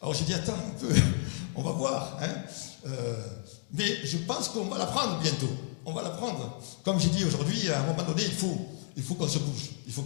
Alors j'ai dit « Attends un peu, on va voir. Hein. Mais je pense qu'on va la prendre bientôt. On va la prendre. Comme j'ai dit aujourd'hui, à un moment donné, il faut qu'on se bouge. Il faut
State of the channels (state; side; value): silent; right; 57 dB below the other